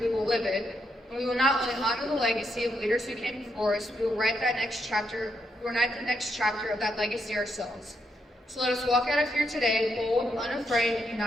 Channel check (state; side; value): normal; both; correlation 0.79